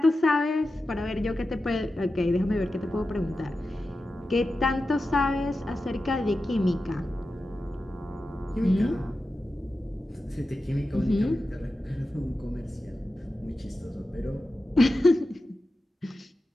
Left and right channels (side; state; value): both; normal; correlation 0.92